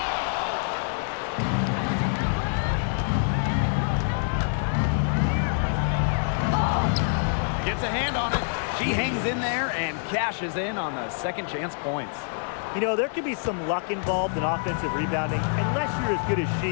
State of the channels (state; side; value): silent; right; digital silence